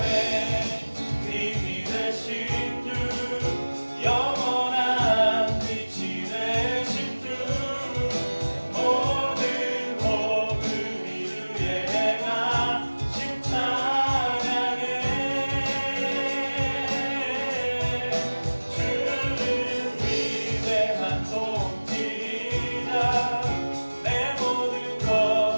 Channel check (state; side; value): inverted; both; correlation -1.00